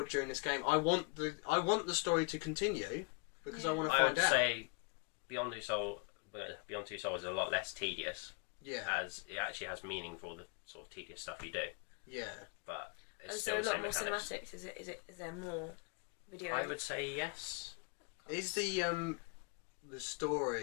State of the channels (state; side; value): quieter; right; 34.1 dB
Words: during this game. I want the story to continue because I want to find out. I would say Beyond Two Souls is a lot less tedious. Yeah. As it actually has meaning for the sort of tedious stuff you do. Yeah. But it's is still there a the lot same more mechanics. cinematics? Is there more video? I would say yes. Is the